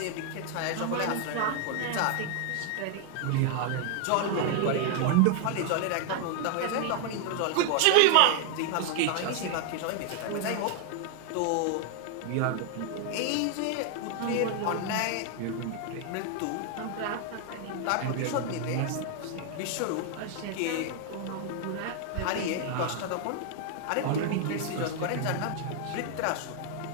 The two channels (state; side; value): different; both; correlation 0.00